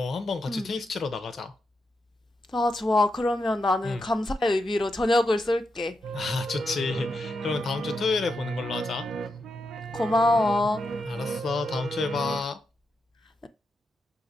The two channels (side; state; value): both; normal; correlation 0.85